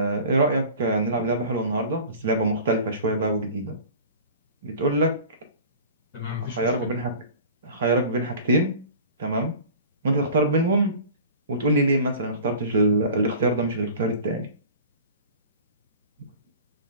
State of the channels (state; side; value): inverted; both; correlation -0.40